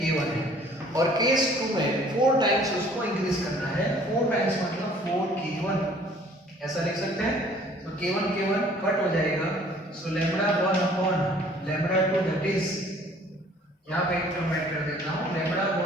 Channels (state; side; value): normal; both; correlation 0.55